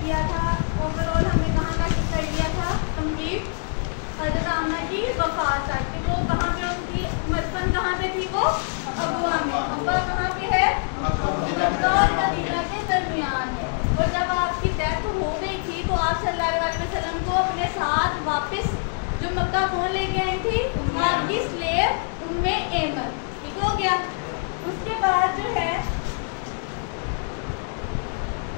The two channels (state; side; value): silent; right; 62 dB below the other